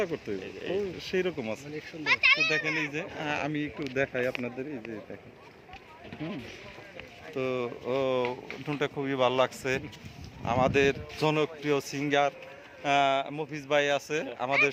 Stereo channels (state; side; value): identical; both; correlation 1.00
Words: করতে সেই রকম আছে। তো দেখেন এই যে আমি একটু দেখাই আপনাদের, এই যে দেখেন, তো ড্রোনটা খুবই ভালো লাগছে। আমাদের জনপ্রিয় সিঙ্গার মফিজ ভাই আছে আমাদের